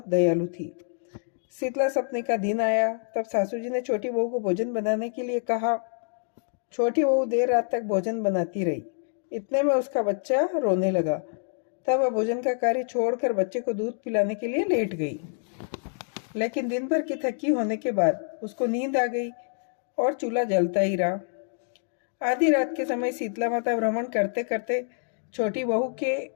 दयालु थी। शीतला सप्तमी का दिन आया तब सासू जी ने छोटी बहू को भोजन बनाने के लिए कहा। छोटी बहू देर रात तक भोजन बनाती रही। इतने में उसका बच्चा रोने लगा। तब वह भोजन का कार्य छोड़कर बच्चे को दूध पिलाने के लिए लेट गई। लेकिन दिन भर की थकी होने के बाद उसको नींद आ गई और चूल्हा जलता ही रहा। आधी रात के समय शीतला माता भ्रमण करते करते छोटी बहू के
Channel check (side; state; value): right; silent; digital silence